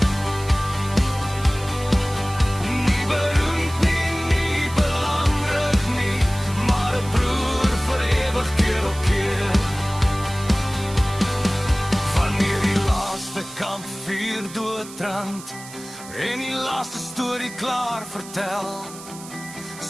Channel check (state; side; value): noise; right; hiss, 16 dB below the sound